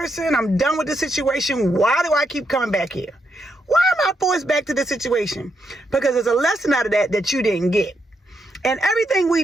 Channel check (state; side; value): normal; both; correlation 0.80